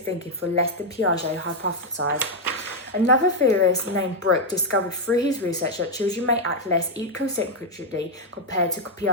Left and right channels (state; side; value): normal; both; correlation 0.00